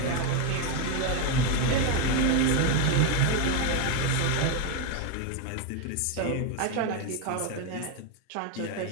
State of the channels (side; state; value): both; different; correlation 0.02